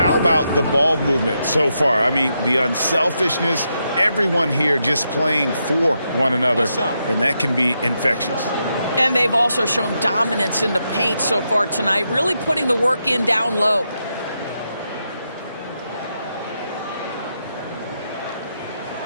about the ball movement so far? I mean, the unselfishness, everyone here just playing for one another, and that can be infectious. And they've also shown dominance in the paint so far tonight, really putting the work in down low.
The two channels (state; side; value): inverted; both; correlation -0.83